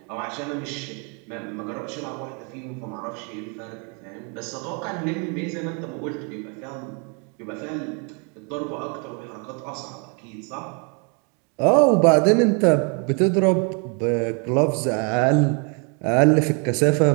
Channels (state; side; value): quieter; left; 35.9 dB